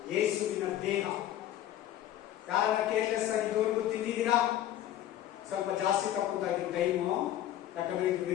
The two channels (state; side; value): quieter; right; 12.4 dB